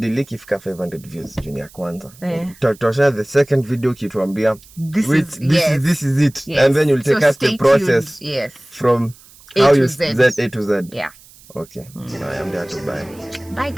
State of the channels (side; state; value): right; noise; hiss, 24 dB below the sound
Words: ifika 500 views junior kwanza. Tutashare the second video kituambia this is it. And then you'll take us the process from how you Z A to Z. Yeah. Okay. I am there to buy. Bye